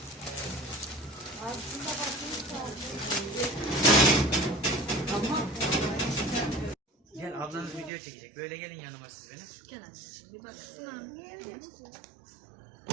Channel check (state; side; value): drops out; left; at 7.9 s